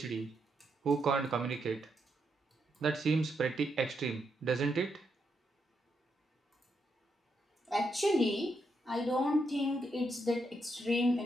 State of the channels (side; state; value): both; normal; correlation 0.80